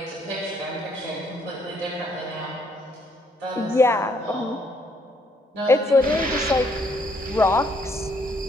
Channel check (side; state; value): both; normal; correlation 0.69